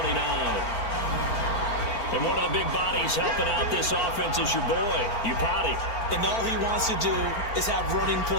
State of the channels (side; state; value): right; late; 4.4 ms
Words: And one of the big bodies helping out this offense is your boy, Upati. And all he wants to do is have running